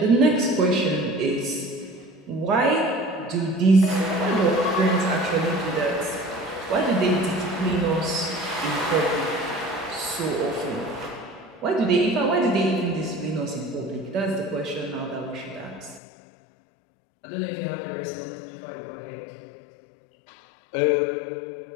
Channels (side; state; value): right; drops out; at 16.0 s